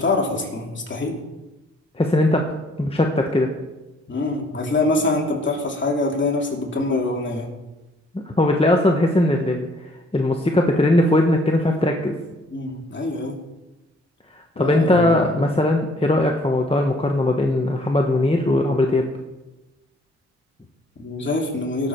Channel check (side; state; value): both; normal; correlation 0.61